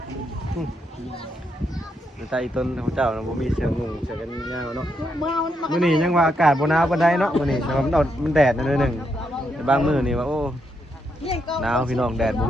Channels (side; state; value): both; normal; correlation 0.79